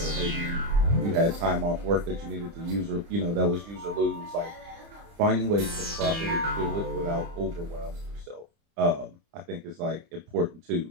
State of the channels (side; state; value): left; late; 30 ms